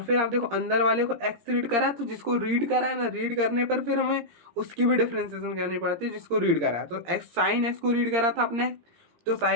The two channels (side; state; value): left; late; 17 ms